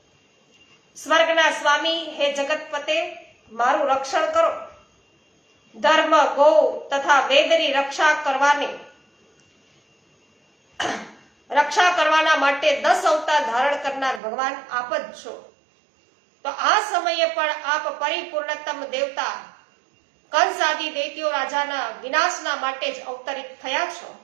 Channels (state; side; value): drops out; left; at 14.2 s